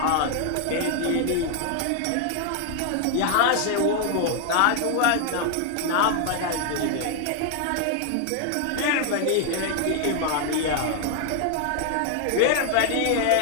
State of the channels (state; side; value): different; both; correlation 0.00